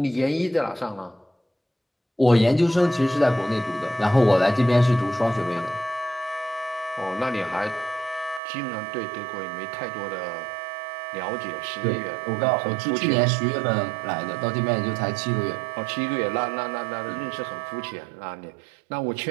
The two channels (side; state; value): left; drops out; at 8.4 s